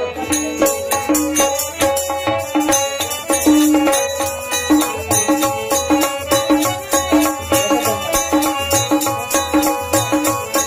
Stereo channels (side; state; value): both; identical; correlation 1.00